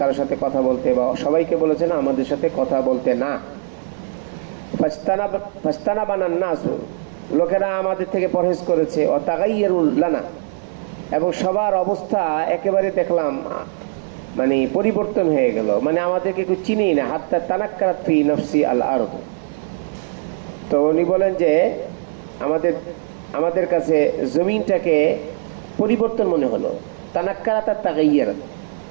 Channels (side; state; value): left; silent; 57 dB below the other